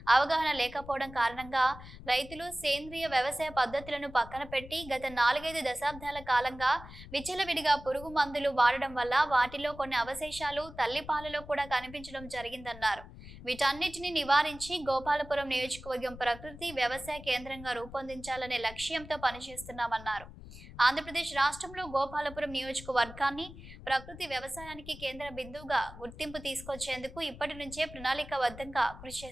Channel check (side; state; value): left; noise; rumble, 15 dB below the sound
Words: అవగాహన లేకపోవడం కారణంగా రైతులు సేంద్రియ వ్యవసాయ పద్ధతులను పక్కన పెట్టి గత 4-5 దశాబ్దాల కాలంగా విచ్చలవిడిగా పురుగు మందులు వాడడం వల్ల వాటిలో కొన్ని అవశేషాలు తల్లిపాలలో కూడా కనిపించడం జరిగిందన్నారు. వీటన్నిటిని నివారించి గోపాలపురం నియోజకవర్గం ప్రకృతి వ్యవసాయ కేంద్రంగా రూపొందించాలనే లక్ష్యంతో పనిచేస్తున్నామన్నారు. ఆంధ్రప్రదేశ్ రాష్ట్రంలో గోపాలపురం నియోజకవర్గాన్ని ప్రకృతి వ్యవసాయానికి కేంద్ర బిందువుగా గుర్తింపు తీసుకొచ్చేందుకు ఇప్పటి నుంచే ప్రణాళికాబద్ధంగా కృషి